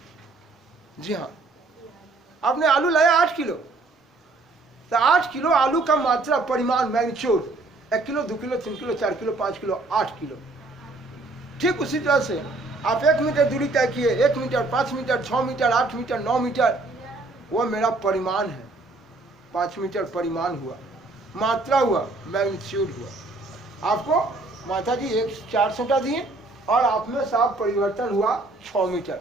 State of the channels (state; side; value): quieter; left; 3.2 dB